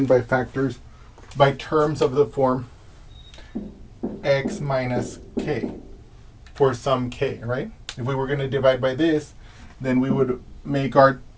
by factors by terms of the form x minus k for some k, right? If we were going to divide by this, then we would make our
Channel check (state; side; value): identical; both; correlation 1.00